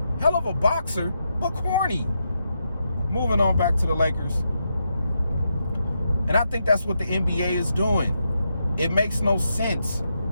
Hell of a boxer, but corny. Moving on back to the Lakers. And I think that's what the NBA is doing. It makes no sense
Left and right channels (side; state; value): both; inverted; correlation -0.83